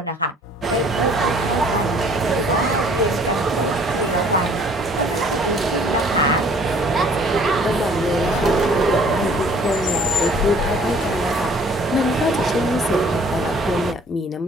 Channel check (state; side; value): normal; both; correlation 0.55